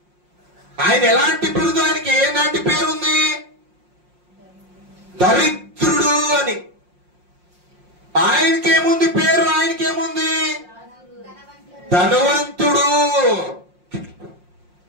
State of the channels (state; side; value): late; left; 5.6 ms